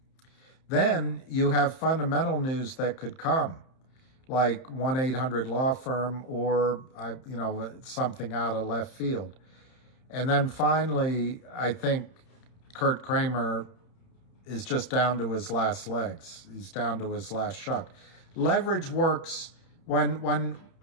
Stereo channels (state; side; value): late; right; 31 ms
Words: Then you have fundamental news that could come, like 1-800-Law Firm or something out of left field. And then finally, I think Curt Kramer is just down to his last legs. He's down to his last shuck. Leverage works when